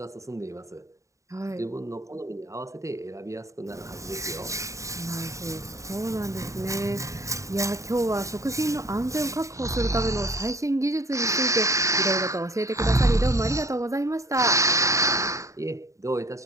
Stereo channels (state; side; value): late; left; 0.15 ms